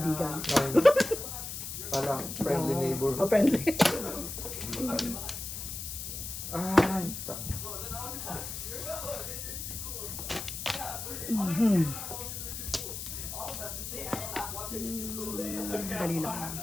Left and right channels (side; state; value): left; noise; hiss, 6 dB below the sound